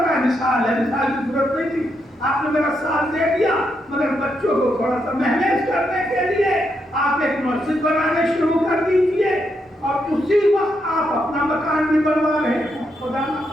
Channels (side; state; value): both; normal; correlation 0.80